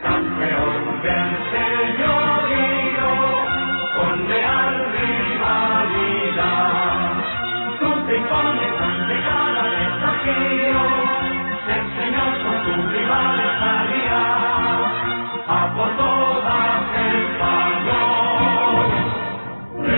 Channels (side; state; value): both; inverted; correlation -1.00